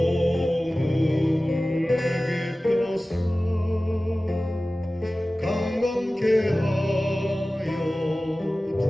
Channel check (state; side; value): normal; both; correlation 0.97